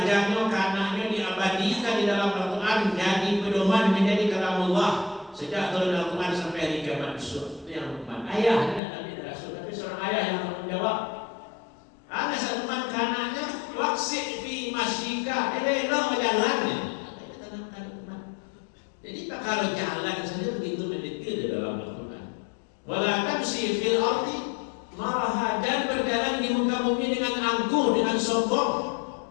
ke anaknya diabadikan di dalam Al-Quran, jadi pedoman menjadi kalamullah sejak turun Al-Quran sampai hari kiamat besok. Itu yang Luqman, ayah tidak Nabi dan Rasul, tapi seorang ayah yang bertanggung jawab. Anak Luqman ke anaknya, waksik fi masyika, elok jalannya. Jadi tak kalau jalan saja begitu mendetail di dalam Al-Quran. Wala tamshi fil ardi maraha, dan berjalan di muka bumi dengan angkuh, dengan sombong.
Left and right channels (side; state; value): right; drops out; at 8.8 s